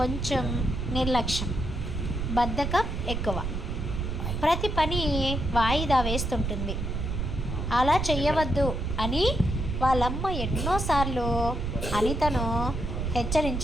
కొంచెం నిర్లక్ష్యం, బద్ధకం ఎక్కువ. ప్రతి పని వాయిదా వేస్తుంటుంది. అలా చెయ్యవద్దు అని వాళ్ళమ్మ ఎన్నోసార్లు అనితను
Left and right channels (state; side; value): noise; right; rumble, 2 dB below the sound